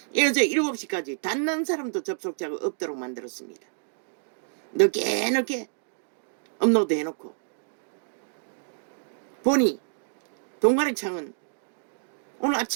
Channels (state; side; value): silent; left; digital silence